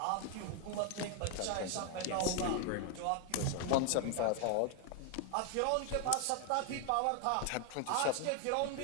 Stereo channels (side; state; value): both; different; correlation 0.00